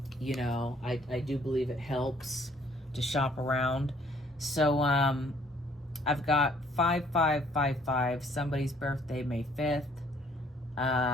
You know, I do believe it helps to shop around. So I've got 5555, somebody's birthday, May 5th.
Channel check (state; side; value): normal; both; correlation 0.61